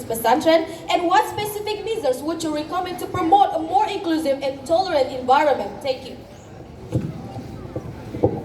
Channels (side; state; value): both; identical; correlation 1.00